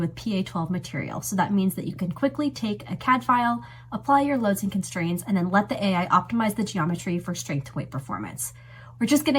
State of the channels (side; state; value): both; identical; correlation 1.00